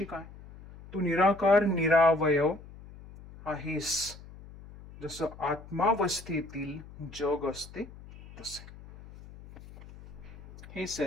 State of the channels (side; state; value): left; noise; hum, 18 dB below the sound